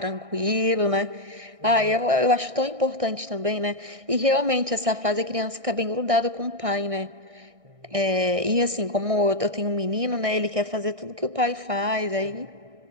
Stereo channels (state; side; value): late; left; 1.6 ms